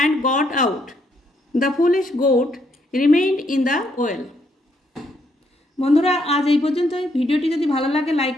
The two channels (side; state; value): both; normal; correlation 0.73